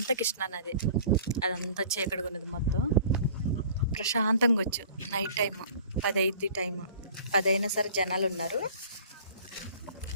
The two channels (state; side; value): inverted; both; correlation -0.47